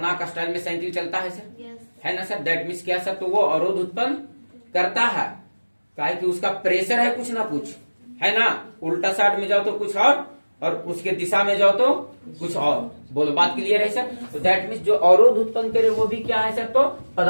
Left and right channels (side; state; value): both; inverted; correlation -1.00